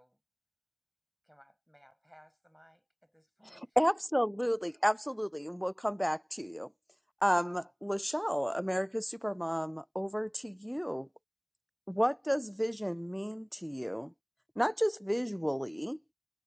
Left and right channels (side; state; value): both; identical; correlation 1.00